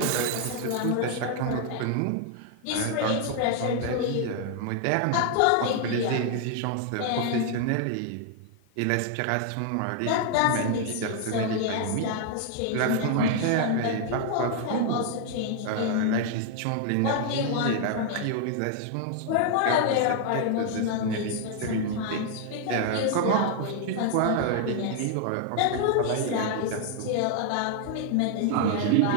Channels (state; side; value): different; both; correlation 0.00